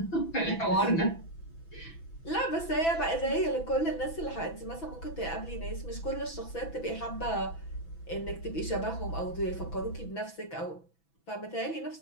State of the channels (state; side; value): late; right; 6.0 ms